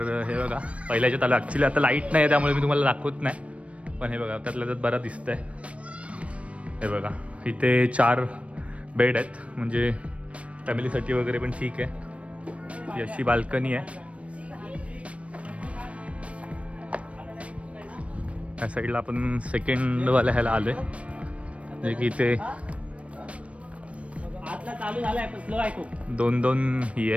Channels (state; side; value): late; left; 0.063 ms